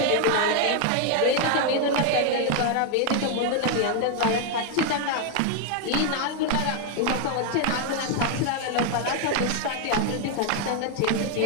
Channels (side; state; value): both; different; correlation 0.00